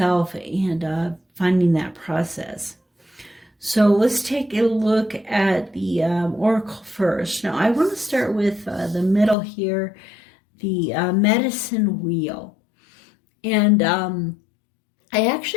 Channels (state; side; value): drops out; right; at 9.3 s